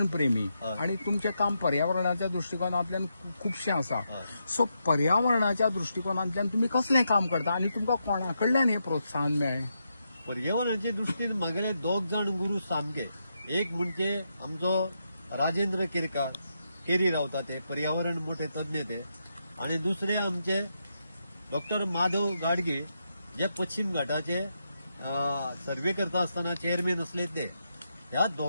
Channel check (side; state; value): both; inverted; correlation -0.83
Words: प्रेमी आणि तुमचें काम पर्यावरणाच्या दृश्टिकोनांतल्यान खूबशें आसा. सो पर्यावरणाच्या दृश्टिकोनांतल्यान तुमी कसलें काम करता आनी तुमकां कोणा कडल्यान हें प्रोत्साहन मेळ्ळें? पर्यावरणाचे दृश्टीन म्हागेले दोग जाण गुरू सामके. एक म्हणजे आमचो राजेंद्र केरकार, केरी रावता ते पर्यावरण मोठे तज्ञ ते, आणि दुसरे आमचे डॉक्टर माधव गाडगे जे पश्चिम घाटाचे सर्वे करता आसतना चेअरमॅन असले ते. ह्या